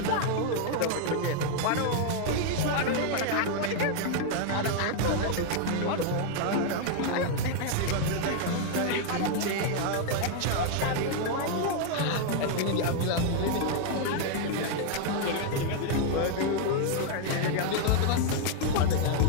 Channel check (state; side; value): different; both; correlation 0.00